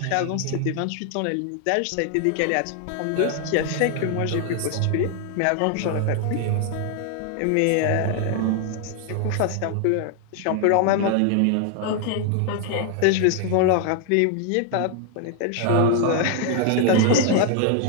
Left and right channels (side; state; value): both; different; correlation 0.00